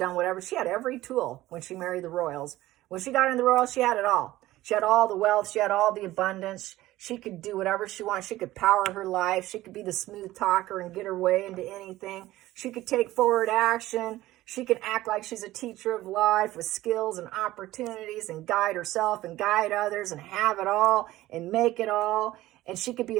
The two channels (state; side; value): quieter; left; 16.3 dB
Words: whatever. She had every tool when she married the royals. When she got in the royals, she had it all. She had all the wealth. She had all the abundance. She could do whatever she wanted. She could power her life. She could be the smooth talker and get her way into anything. She could take forward action. She could act like she's a teacher of life with skills and opportunities and guide herself and guide others and have it all and make it all. And she could be